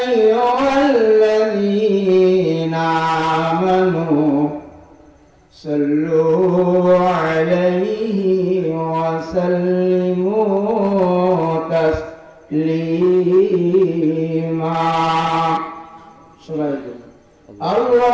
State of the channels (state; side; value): identical; both; correlation 1.00